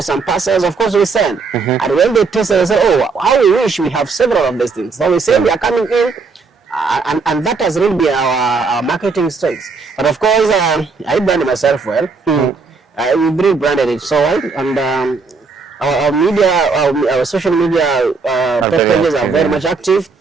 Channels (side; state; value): left; quieter; 4.5 dB